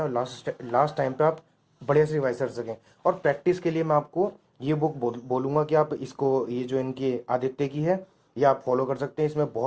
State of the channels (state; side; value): identical; both; correlation 1.00